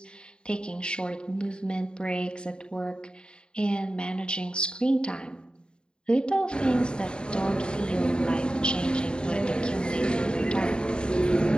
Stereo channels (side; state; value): right; late; 0.049 ms